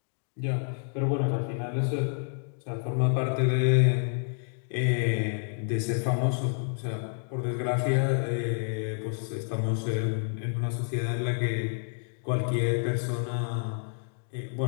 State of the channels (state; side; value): silent; right; digital silence